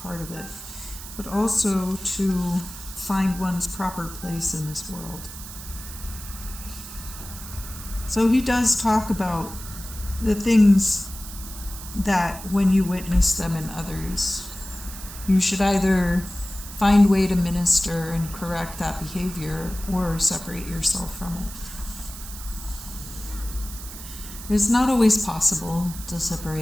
of it, but also to find one's proper place in this world. So he does talk about the things that when you witness them in others, you should either find way to minister and correct that behavior or separate yourself from it. It's not always possible to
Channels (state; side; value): noise; right; hiss, 13 dB below the sound